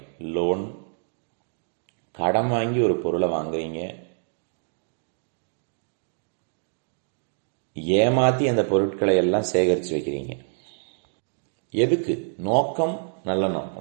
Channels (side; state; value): left; silent; digital silence